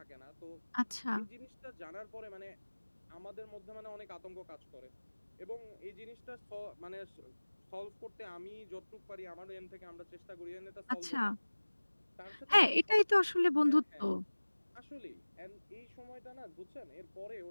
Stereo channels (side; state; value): both; inverted; correlation -1.00